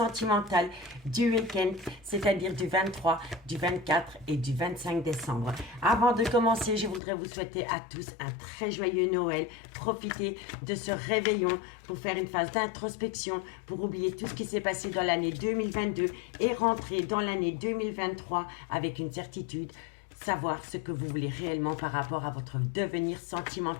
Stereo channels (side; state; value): right; drops out; at 7.0 s